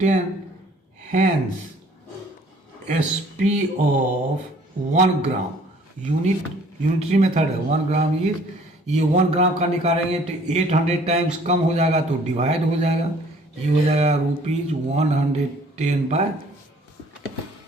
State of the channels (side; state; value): both; normal; correlation 0.56